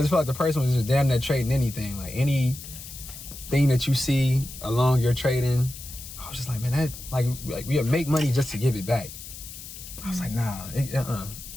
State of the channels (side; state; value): left; noise; hiss, 13 dB below the sound